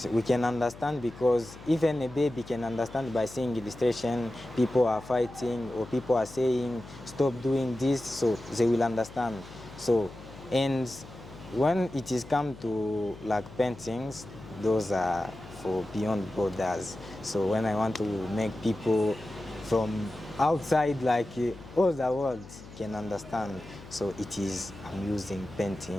we can understand, because even a baby can understand by seeing illustration, people are fighting or people are saying stop doing this, so they will understand. So, and when it is come to like paintings, those are for beyond borders. So when I want to make people from outside, like all the world can understand, so it is, I'm using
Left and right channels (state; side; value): noise; left; hum, 17 dB below the sound